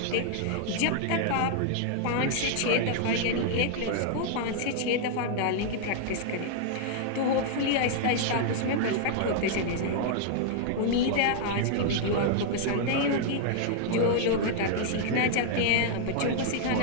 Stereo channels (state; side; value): different; both; correlation 0.00